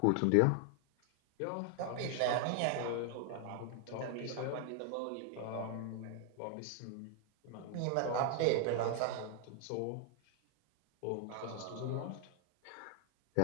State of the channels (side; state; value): both; different; correlation 0.00